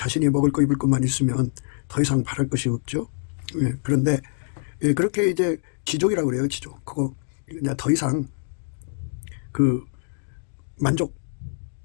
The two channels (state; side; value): silent; right; digital silence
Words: 먹을 거 입을 것만 있으면 더 이상 바랄 것이 없죠. 그런데 그렇게 이제 지족이라고 그래요. 지족. 그거 그냥 더 이상 그